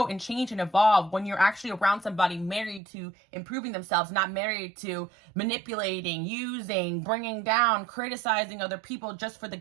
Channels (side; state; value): left; drops out; at 2.8 s